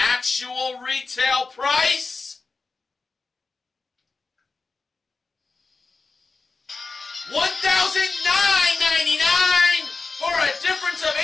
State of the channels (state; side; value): quieter; right; 4.1 dB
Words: retail price $1,999 for a difference of